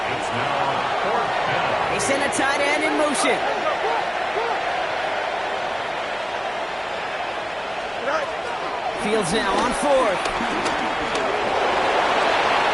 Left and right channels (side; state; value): both; identical; correlation 1.00